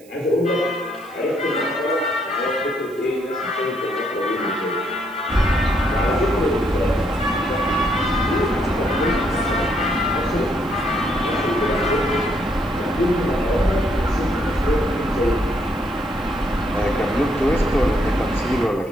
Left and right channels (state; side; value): noise; right; hiss, 27 dB below the sound